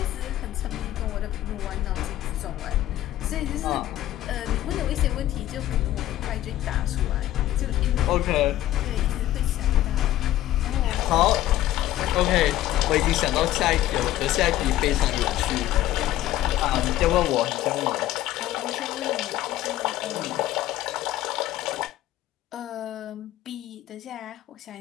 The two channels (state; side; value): quieter; right; 14.0 dB